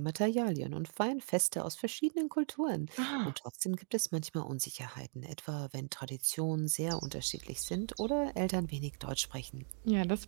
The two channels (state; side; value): silent; left; 53 dB below the other